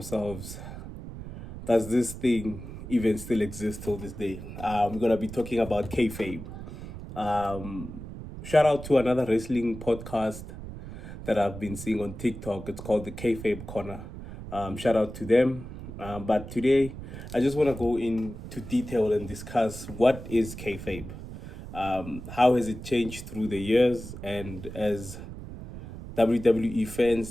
does this thing even still exist till this day? We're going to be talking about Kayfabe. Shout out to another wrestling podcast that I've been seeing on TikTok. It's called the Kayfabe Corner. Shout out to them. But today, I just want to go into detail and discuss what is Kayfabe. How has it changed through the years? And as WWE fans,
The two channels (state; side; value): noise; right; rumble, 11 dB below the sound